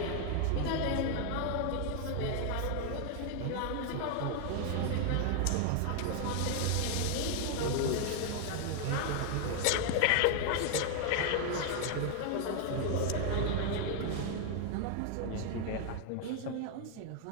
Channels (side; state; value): both; different; correlation 0.00